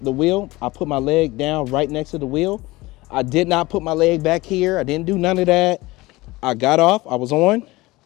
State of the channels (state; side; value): quieter; right; 20.5 dB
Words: wheel. I put my leg down right next to the wheel. I did not put my leg back here. I didn't do none of that. I got off, I was on.